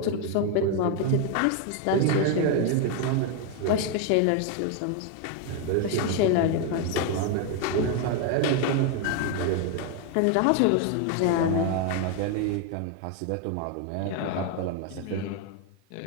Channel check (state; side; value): different; both; correlation 0.01